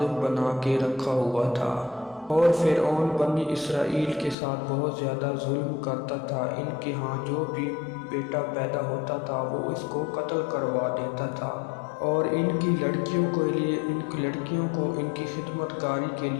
بنا کے رکھا ہوا تھا، اور فرعون بنی اسرائیل کے ساتھ بہت زیادہ ظلم کرتا تھا۔ ان کے ہاں جو بھی بیٹا پیدا ہوتا تھا وہ اس کو قتل کروا دیتا تھا، اور ان کی لڑکیوں کو ان کی خدمت کاری کے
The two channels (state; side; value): drops out; right; at 4.4 s